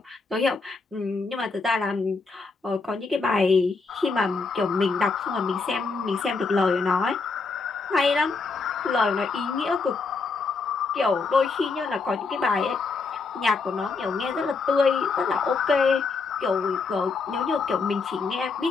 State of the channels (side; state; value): right; quieter; 4.3 dB